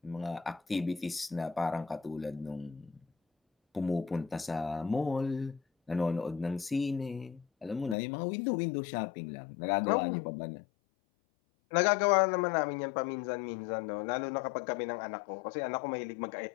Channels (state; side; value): drops out; right; at 8.0 s